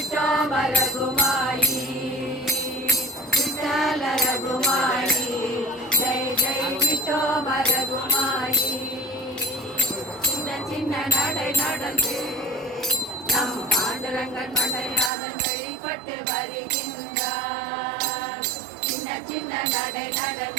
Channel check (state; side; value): drops out; left; at 15.1 s